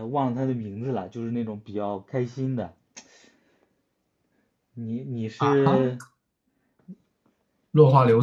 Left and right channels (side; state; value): both; identical; correlation 1.00